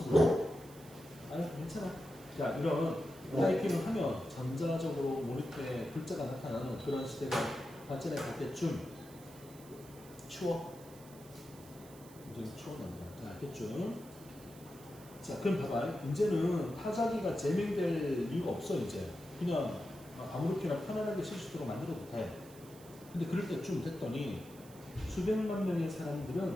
그래. 아니, 괜찮아. 자, 이런 타이핑을 하면 전자적으로 모니터에 글자가 나타나는 그런 시대가 발전해 갈 때쯤 추워. 굉장히 추워납니다. 자, 알겠죠? 자, 그럼 봐봐. 이제는 타자기가 재밍될 이유가 없어, 이제. 그냥 아무렇게나 편안하게 쓸 수 있도록 만들어도 돼. 근데 그럴 때쯤 됐더니 수백만 명의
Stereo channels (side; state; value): right; noise; hiss, 21 dB below the sound